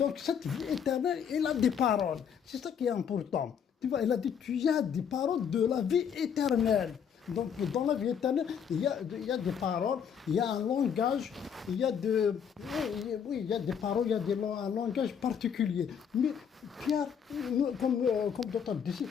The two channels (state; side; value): quieter; right; 7.6 dB